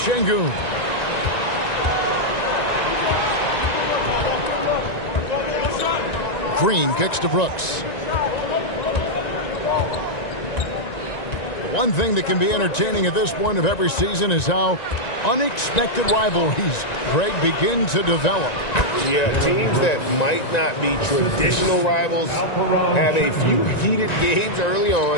Green kicks to Brooks. One thing that can be entertaining at this point of every season is how unexpected rivalries, Greg, begin to develop. Yeah, teams that might not be traditional rivals have a few heated games early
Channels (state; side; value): late; right; 1.9 ms